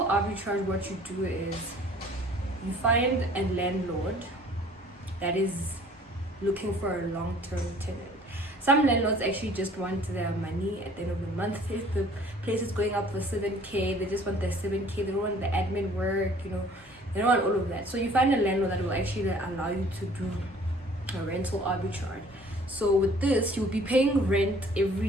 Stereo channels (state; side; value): normal; both; correlation 0.53